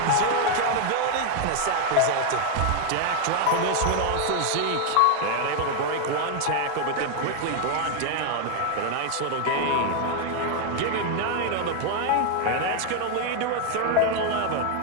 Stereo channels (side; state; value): both; different; correlation 0.00